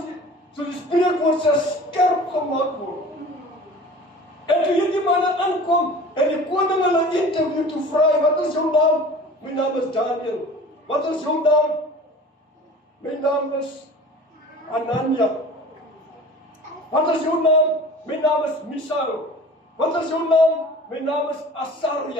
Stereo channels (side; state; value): both; normal; correlation 0.41